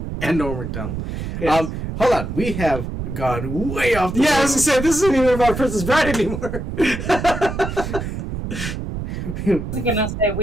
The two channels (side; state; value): right; noise; rumble, 6 dB below the sound